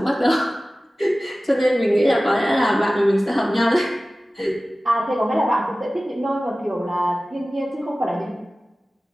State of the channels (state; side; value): normal; both; correlation 0.97